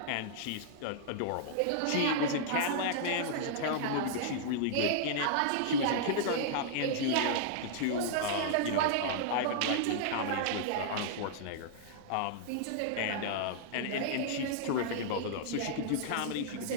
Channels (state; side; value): different; both; correlation -0.01